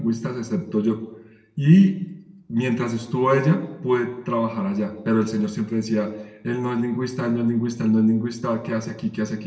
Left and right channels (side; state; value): both; identical; correlation 1.00